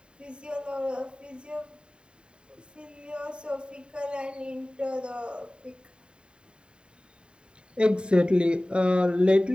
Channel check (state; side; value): late; left; 0.051 ms